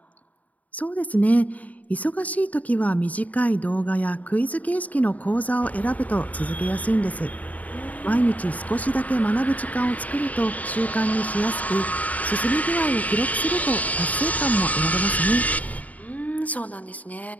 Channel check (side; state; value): right; late; 0.072 ms